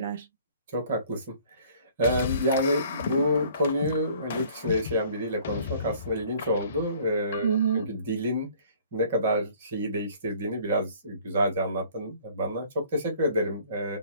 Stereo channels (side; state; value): both; inverted; correlation -0.54